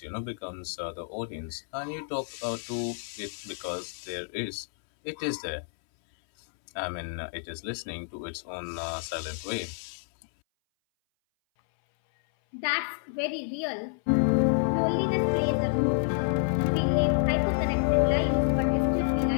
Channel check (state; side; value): silent; right; 59 dB below the other